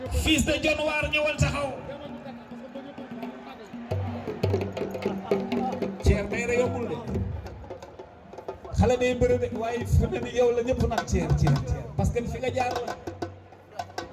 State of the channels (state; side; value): identical; both; correlation 1.00